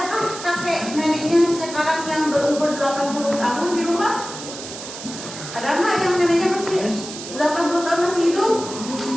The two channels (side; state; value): right; noise; hiss, 11 dB below the sound